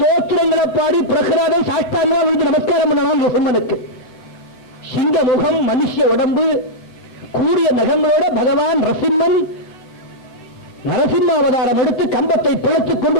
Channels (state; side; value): late; right; 8.0 ms